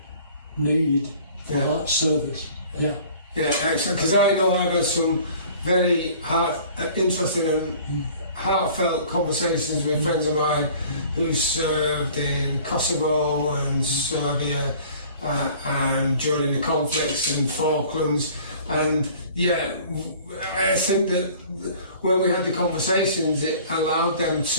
need for that service. Yeah, excellent. Because I know I've had some very interesting and heartfelt conversations with friends of mine who served in Kosovo and Serbia and during the conflicts in Falklands. And I think that when we had the conversations, it allowed them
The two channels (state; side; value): inverted; both; correlation -0.49